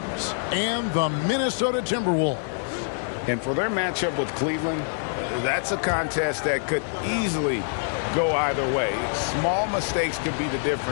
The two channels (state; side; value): silent; right; digital silence